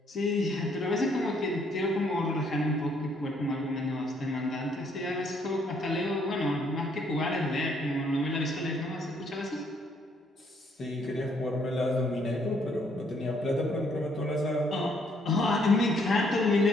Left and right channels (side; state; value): both; normal; correlation 0.68